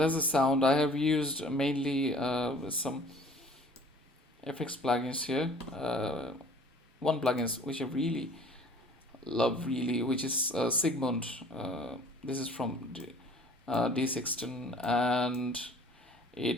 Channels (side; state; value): both; normal; correlation 0.51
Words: the sound I have used mainly with some FX plugins here. One plugins which I really love, really, which is Sigmund. This is from D16, and